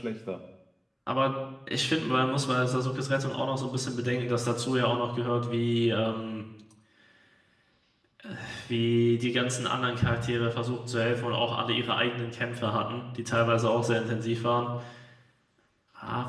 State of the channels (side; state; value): both; identical; correlation 1.00